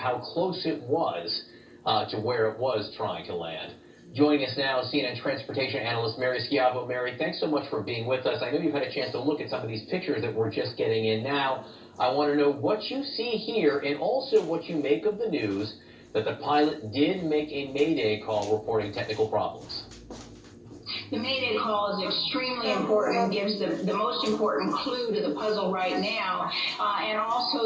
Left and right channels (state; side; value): identical; both; correlation 1.00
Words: close it was to where it was trying to land. Joining us now, CNN transportation analyst Mary Schiavo. Mary, thanks so much for being with us. I know you've had a chance to look at some of these pictures that we're just getting in now. I want to know what you see here and also what you make of the news that the pilot did make a mayday call reporting technical problems. The mayday call is extremely important and gives the most important clue to the puzzle right now, and